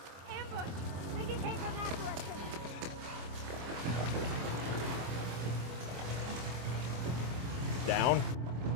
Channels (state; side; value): late; left; 25 ms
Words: Think it came from that direction. Down.